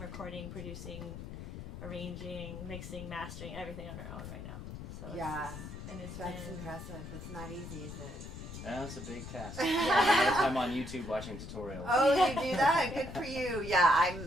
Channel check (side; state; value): left; noise; rumble, 10 dB below the sound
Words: producing, arranging, mixing, mastering, everything on our own right now. So yeah, it's that's impressive. It's not easy, is it? Yeah, it's a big task. A lot of time on YouTube watching tutorials. Oh, you do that? Good for you. Yeah,